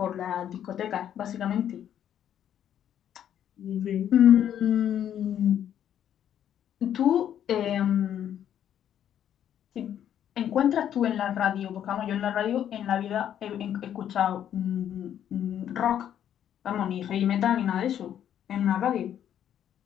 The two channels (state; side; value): quieter; right; 10.1 dB